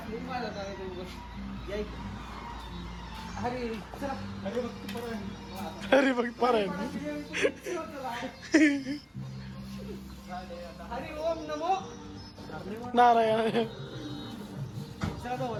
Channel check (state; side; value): identical; both; correlation 1.00